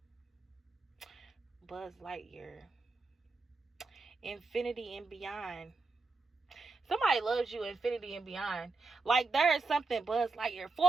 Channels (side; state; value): left; quieter; 3.8 dB